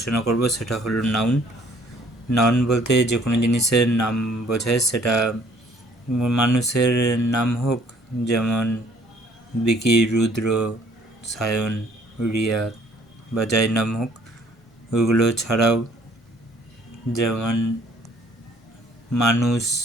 করব সেটা হলো নাউন। নাউন বলতে যে কোনো জিনিসের নাম বোঝায়, সেটা মানুষের নাম হোক, যেমন বিকি, রুদ্র, সায়ন, রিয়া বা যাই নাম হোক। ওইগুলো ছাড়াও যেমন মানুষ,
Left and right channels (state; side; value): normal; both; correlation 0.59